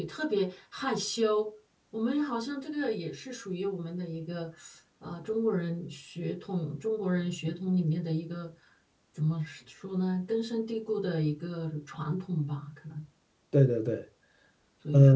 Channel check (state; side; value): identical; both; correlation 1.00